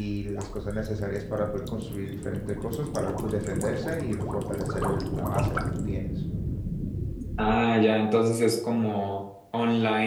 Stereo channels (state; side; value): identical; both; correlation 1.00